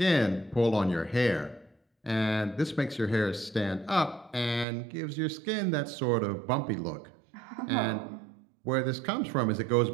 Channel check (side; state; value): left; drops out; at 4.7 s